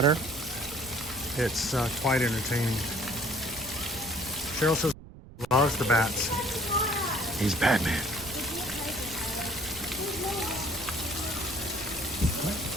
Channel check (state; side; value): noise; right; rumble, 17 dB below the sound